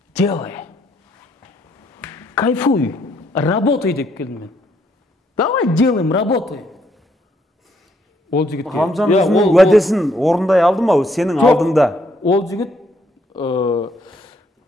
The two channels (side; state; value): both; normal; correlation 0.71